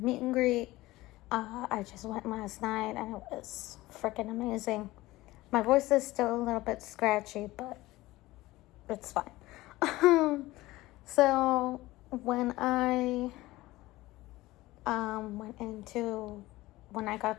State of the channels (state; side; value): quieter; right; 18.4 dB